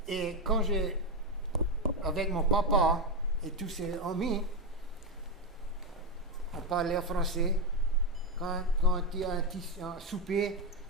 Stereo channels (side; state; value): both; normal; correlation 0.08